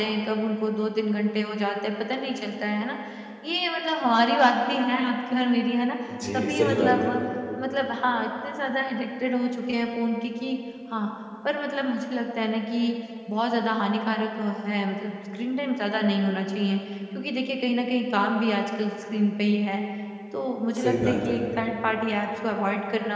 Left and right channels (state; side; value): identical; both; correlation 1.00